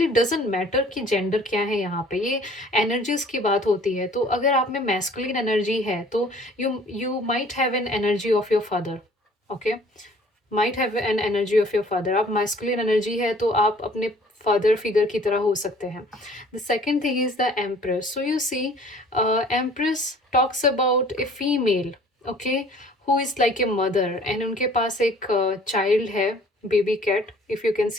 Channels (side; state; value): both; normal; correlation 0.53